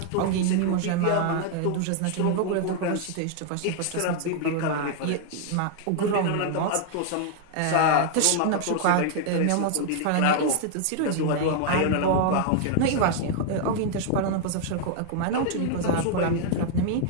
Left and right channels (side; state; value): both; different; correlation 0.00